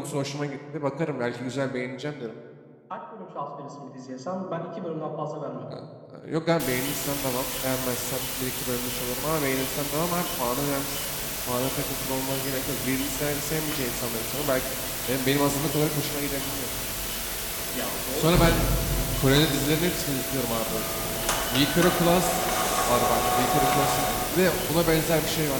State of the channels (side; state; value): both; identical; correlation 1.00